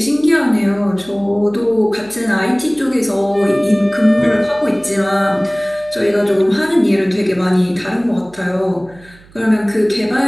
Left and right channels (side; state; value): right; noise; hum, 26 dB below the sound